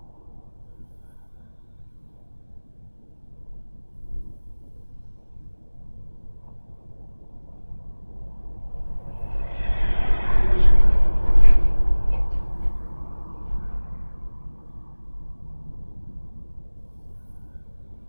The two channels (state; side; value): inverted; both; correlation -1.00